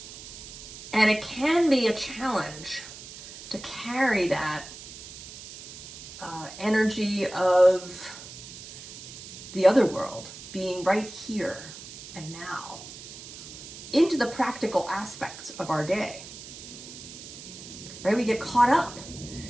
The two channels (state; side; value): noise; right; hiss, 14 dB below the sound